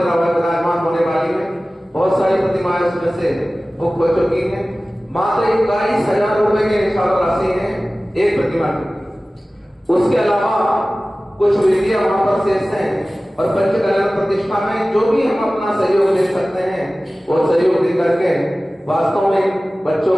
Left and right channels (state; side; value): normal; both; correlation 0.97